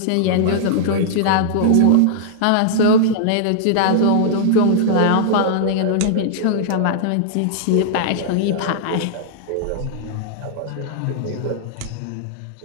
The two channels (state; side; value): different; both; correlation -0.01